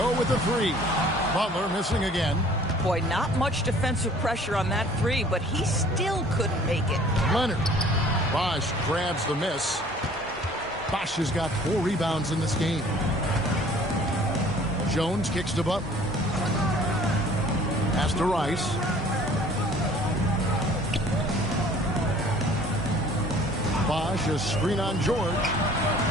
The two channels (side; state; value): both; normal; correlation 0.52